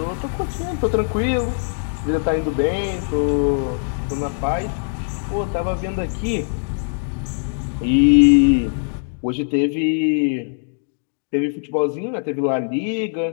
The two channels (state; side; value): silent; right; digital silence